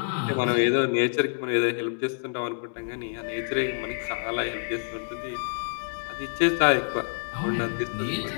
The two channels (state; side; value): silent; right; digital silence